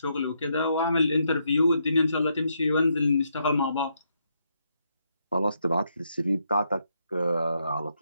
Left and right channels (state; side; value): inverted; both; correlation -0.78